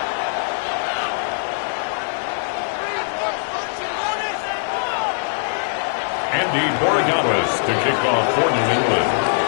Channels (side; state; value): right; silent; 65 dB below the other